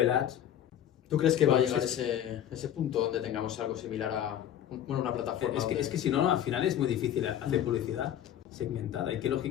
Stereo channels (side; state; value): right; quieter; 10.7 dB